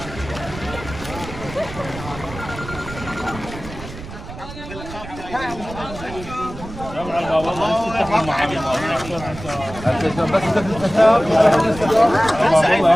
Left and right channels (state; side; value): noise; right; rumble, 12 dB below the sound